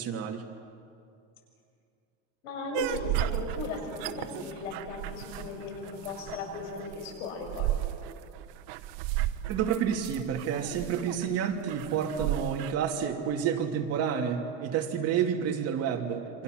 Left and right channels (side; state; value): left; quieter; 7.0 dB